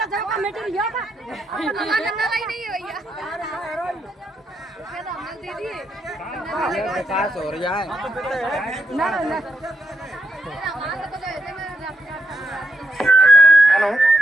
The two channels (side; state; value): both; normal; correlation 0.80